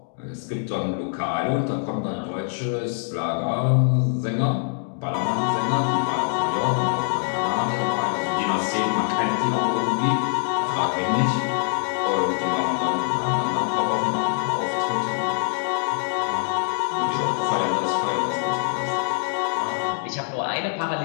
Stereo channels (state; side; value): silent; right; 60 dB below the other